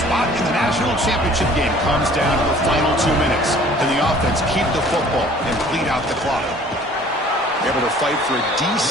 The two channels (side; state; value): both; normal; correlation 0.52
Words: in the national championship game comes down to the final 2 minutes. Can the offense keep the football and bleed out the clock? Able to fight for a